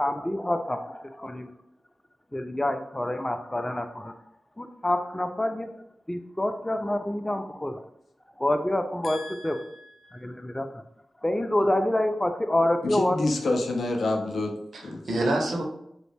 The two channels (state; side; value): normal; both; correlation 0.96